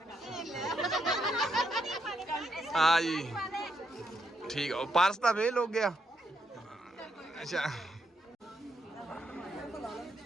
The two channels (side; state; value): both; normal; correlation 0.78